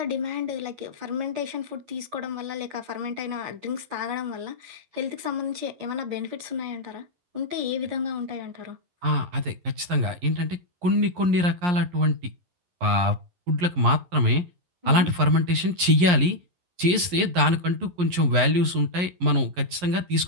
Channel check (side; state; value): left; late; 11 ms